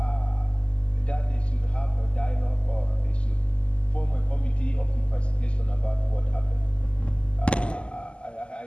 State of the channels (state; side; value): late; right; 0.053 ms